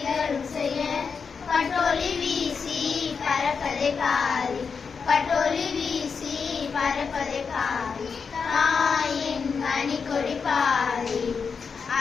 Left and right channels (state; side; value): quieter; right; 5.6 dB